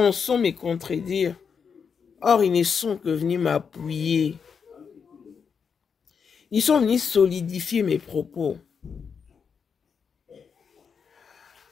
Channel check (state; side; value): quieter; right; 6.3 dB